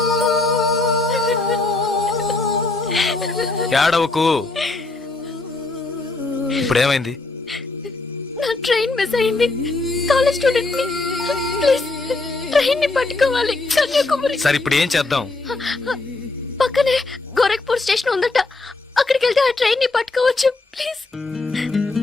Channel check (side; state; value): right; quieter; 3.3 dB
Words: ఏడవకు. ఇప్పుడేమైంది? నా ట్రైన్ మిస్ అయింది. కాలేజ్ స్టూడెంట్ ని. ప్లీజ్ ట్రైన్ ని పట్టుకోవాలి కన్యాకుమారి. సరే ఇప్పుడు ఏం చేద్దాం? పక్కనే గోరఖ్పూర్ స్టేషన్ ఉందట. అక్కడికి వెళ్తే ఆ ట్రైన్ ని పట్టుకోవచ్చు. ప్లీజ్.